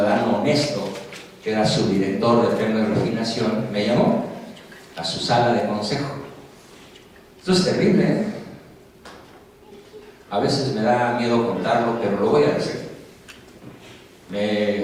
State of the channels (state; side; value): identical; both; correlation 1.00